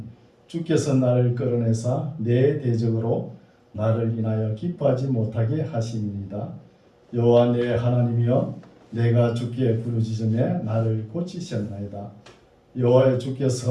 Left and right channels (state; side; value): identical; both; correlation 1.00